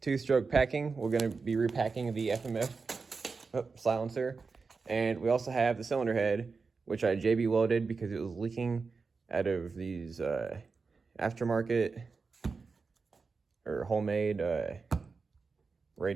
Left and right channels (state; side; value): quieter; left; 4.6 dB